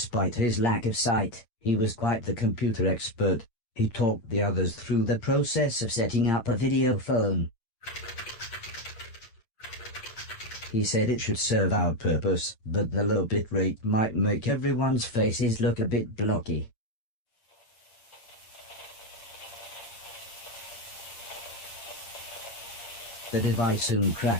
his lack of sight, he was quite the computer expert. He talked the others through the process of setting up a video phone. He said it should serve our purpose, but the low bit rate might make everyone's faces look a bit blocky. The device soon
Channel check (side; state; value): right; late; 8.8 ms